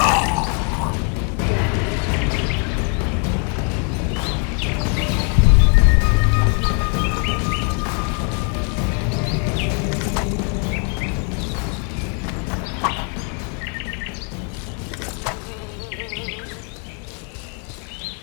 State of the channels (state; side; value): quieter; right; 39.4 dB